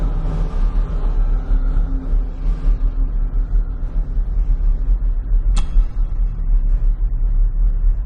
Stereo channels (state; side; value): identical; both; correlation 1.00